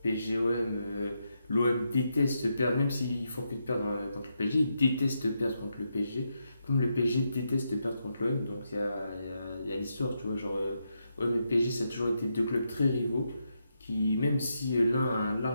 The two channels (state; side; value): inverted; both; correlation -0.83